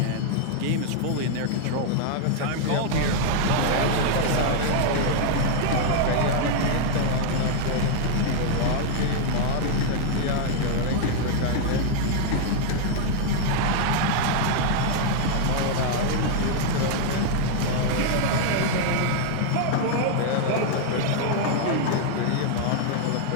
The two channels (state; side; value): different; both; correlation 0.00